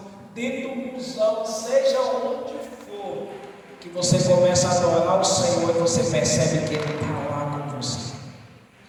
dentro do busão, seja onde for, que você começa a adorar o Senhor e você percebe que Ele está lá com você.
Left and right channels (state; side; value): identical; both; correlation 1.00